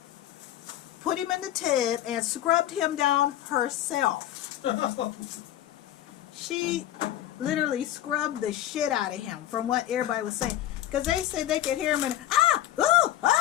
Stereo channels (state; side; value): quieter; right; 12.8 dB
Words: put him in the tub, and scrubbed him down herself. She literally scrubbed the shit out of him, from what everybody was saying. Because they said they could hear him in, ooh,